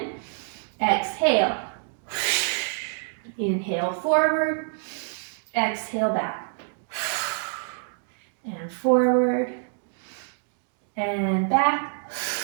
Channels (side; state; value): left; silent; digital silence